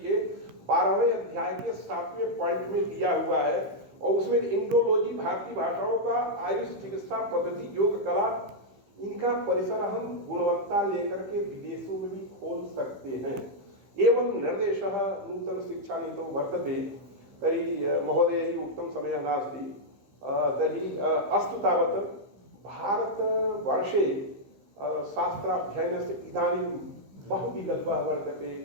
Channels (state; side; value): late; left; 15 ms